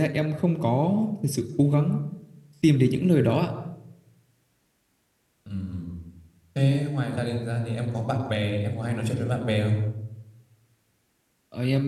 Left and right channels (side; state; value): both; identical; correlation 1.00